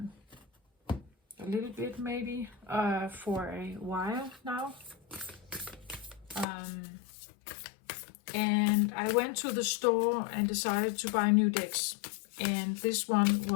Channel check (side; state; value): right; drops out; at 6.5 s